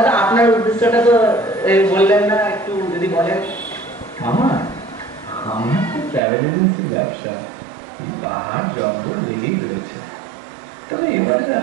আপনার উদ্দেশ্যটা তো বললেন না একটু যদি বলেন আমার আমার তো ট্রাভেল এজেন্সির ব্যবসা পাহাড় জঙ্গল লেগেই রয়েছে তবে এবারে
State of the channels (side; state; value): left; drops out; at 6.2 s